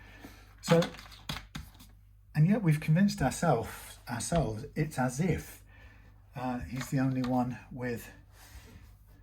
So, and yet we've convinced ourselves it's as if he's the only one with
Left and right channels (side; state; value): both; identical; correlation 1.00